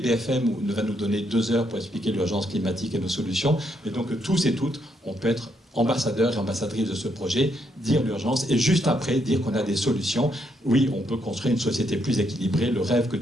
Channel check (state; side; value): normal; both; correlation 0.76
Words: ne va nous donner 2 heures pour expliquer l'urgence climatique et nos solutions, mais donc tous et toutes, on peut être ambassadeurs et ambassadrices de ce projet, dire l'urgence et juste après dire qu'on a des solutions. Oui, on peut construire une société plus équilibrée, le rêve que